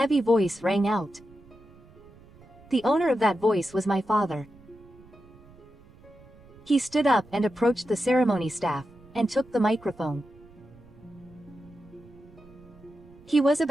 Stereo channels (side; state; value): right; noise; rumble, 24 dB below the sound